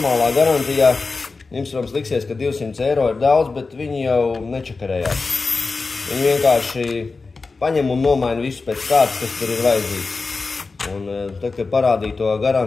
garantijā, jums, protams, liksies, ka 200 eiro ir daudz, bet viņi jau nečakarējās. Viņi vienkārši paņem un nomaina visu pēc kārtas, kas tur ir vajadzīgs. Un tad, kad parādīja to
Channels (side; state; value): right; quieter; 4.0 dB